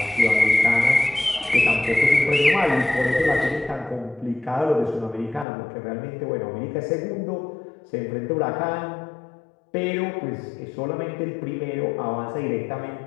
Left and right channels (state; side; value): drops out; right; at 5.5 s